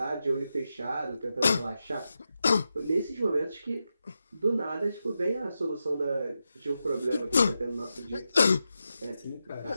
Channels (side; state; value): both; inverted; correlation -0.89